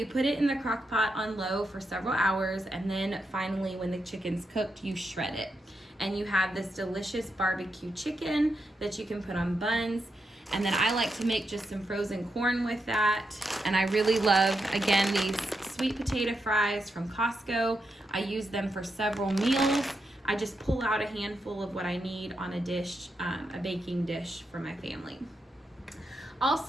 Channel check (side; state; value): both; normal; correlation 0.84